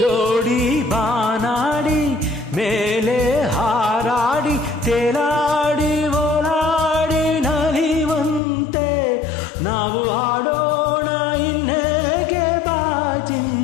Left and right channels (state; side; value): drops out; right; at 8.4 s